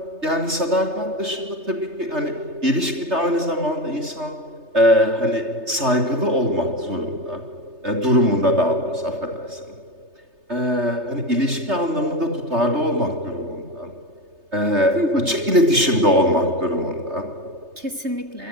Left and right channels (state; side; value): late; left; 3.3 ms